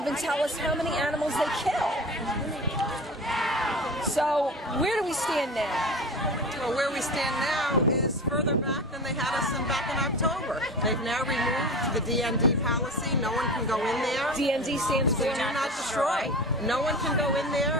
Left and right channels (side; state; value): both; normal; correlation 0.32